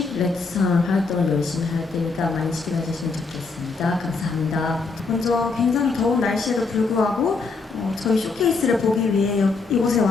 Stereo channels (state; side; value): quieter; right; 4.2 dB